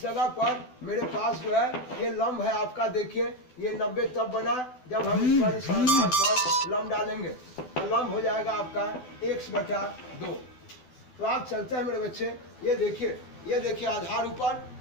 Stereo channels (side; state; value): right; late; 12 ms